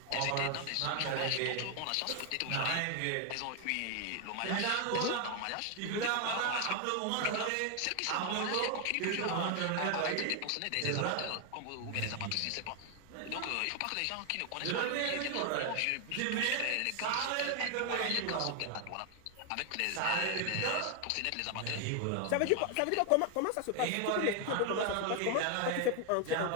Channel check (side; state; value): both; different; correlation 0.00